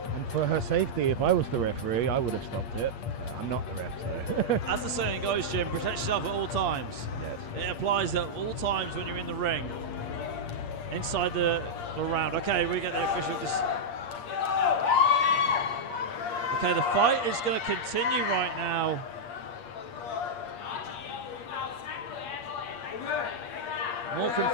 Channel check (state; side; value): late; right; 8.5 ms